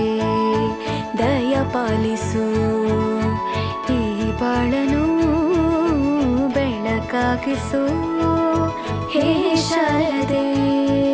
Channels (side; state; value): both; identical; correlation 1.00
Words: ದಯ ಪಾಲಿಸು, ಈ ಬಾಳನು ಬೆಳಕಾಗಿಸು. ಹೇ ಶಾರದೆ